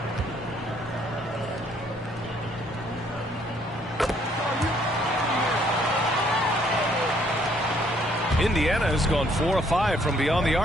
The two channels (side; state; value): both; normal; correlation 0.65